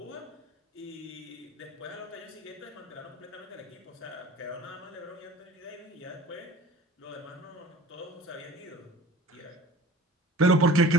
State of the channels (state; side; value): normal; both; correlation 0.43